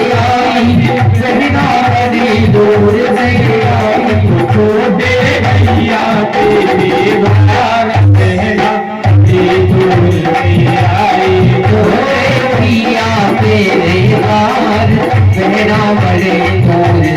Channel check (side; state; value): both; identical; correlation 1.00